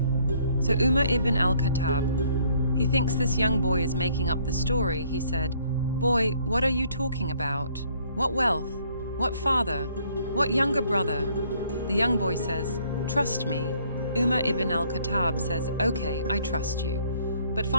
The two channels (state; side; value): inverted; both; correlation -0.64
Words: So Umar Ibn Al Khattab, he thinks this young boy is making up the story. He said, "Boy, what are you talking about? What wealth? What father? What younger brother?" The young boy says, "Trust me." Umar Ibn Al Khattab says, "Okay, I trust you. But